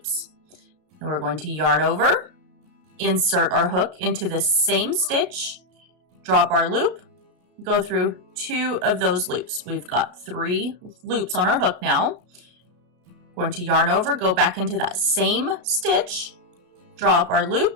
and we're going to yarn over, insert our hook into the same stitch, drop our loop, go through 2 of those loops. We've got 3 loops on our hook now. Going to yarn over, go back into that same stitch, draw up our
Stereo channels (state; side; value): late; left; 33 ms